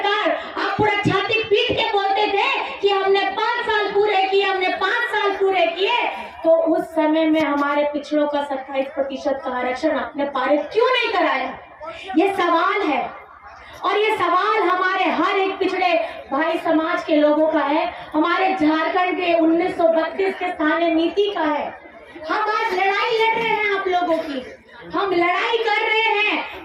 आप पूरा छाती पीट के बोलते थे कि हमने 5 साल पूरे किए, हमने 5 साल पूरे किए, तो उस समय में हमारे पिछड़ों का 27% का आरक्षण आपने पारित क्यों नहीं कराया? ये सवाल है और ये सवाल हमारे हर एक पिछड़े भाई समाज के लोगों का है, हमारे झारखंड के 1932 के स्थानीय नीति का है। हम आज लड़ाई लड़ रहे हैं आप लोगों की, हम लड़ाई कर रहे हैं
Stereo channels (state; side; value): identical; both; correlation 1.00